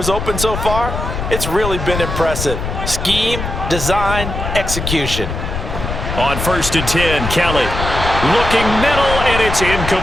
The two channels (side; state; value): left; noise; rumble, 5 dB below the sound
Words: open so far, it's really been impressive. Scheme, design, execution. On 1st and 10, Kelly looking middle, and it's